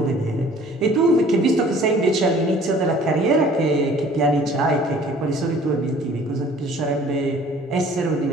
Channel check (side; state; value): both; normal; correlation 0.52